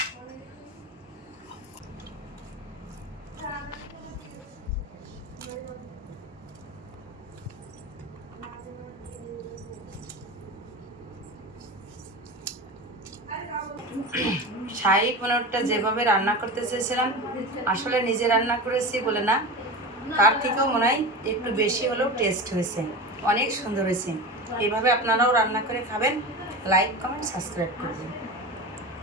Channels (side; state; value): both; normal; correlation 0.27